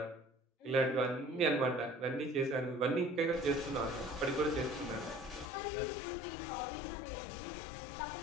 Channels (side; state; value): right; drops out; at 5.5 s